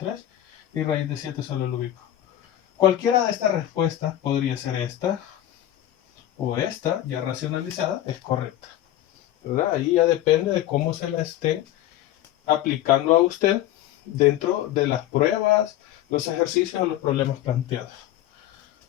Y raíz de 7 solo lo ubico. Cualquiera de estas respuestas podría ser esta o esta, ya racionalizada, es correcta. ¿Verdad? Ahí ya depende de cómo se la esté aplicando a usted dentro de las pruebas, los ejercicios o los problemas planteados.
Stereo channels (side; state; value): right; quieter; 13.2 dB